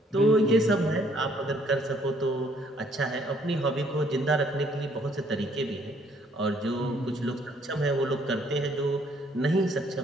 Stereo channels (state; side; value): normal; both; correlation 0.65